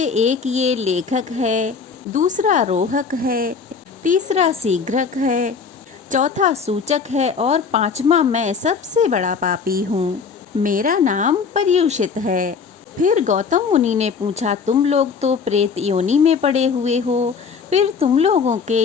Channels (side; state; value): right; quieter; 5.6 dB